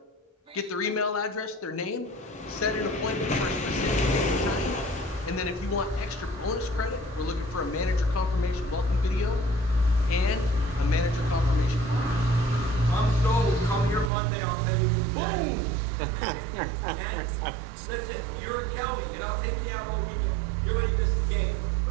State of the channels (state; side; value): drops out; left; at 14.1 s